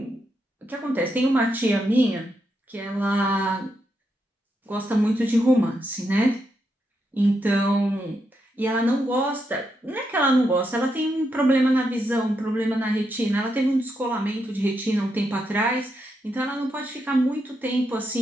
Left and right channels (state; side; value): normal; both; correlation 0.82